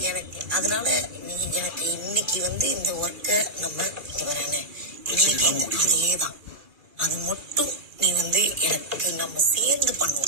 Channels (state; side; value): late; left; 2.1 ms